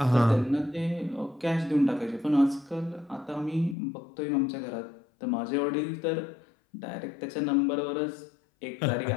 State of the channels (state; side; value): drops out; right; at 3.8 s